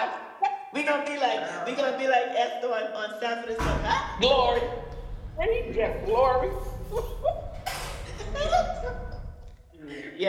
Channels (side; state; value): both; identical; correlation 1.00